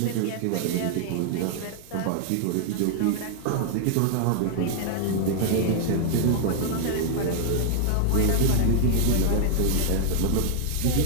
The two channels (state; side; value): different; both; correlation -0.01